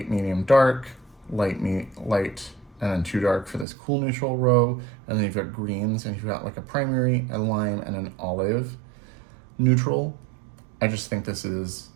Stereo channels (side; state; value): left; drops out; at 3.7 s